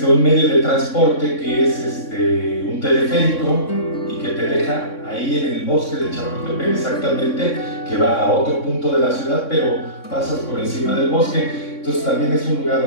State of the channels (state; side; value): late; right; 3.6 ms